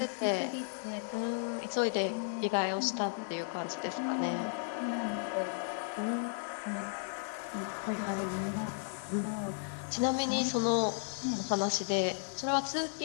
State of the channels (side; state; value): right; silent; 55 dB below the other